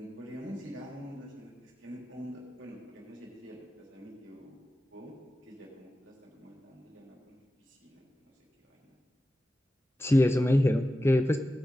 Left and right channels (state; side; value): normal; both; correlation 0.93